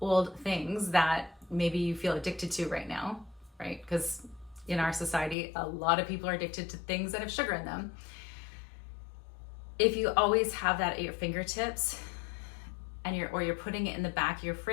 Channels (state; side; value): drops out; right; at 5.4 s